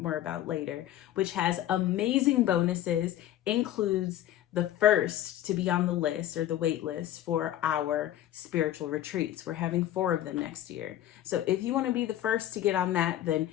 about later, which has amazing bonuses, includes the first to be on the list or the wait list for our spiritual retreats. We're having 4 of them next year. So if you want to be the first to get on that, then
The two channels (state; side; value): quieter; right; 12.7 dB